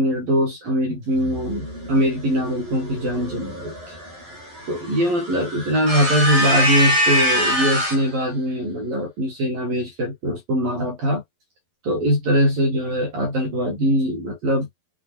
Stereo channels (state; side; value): late; left; 11 ms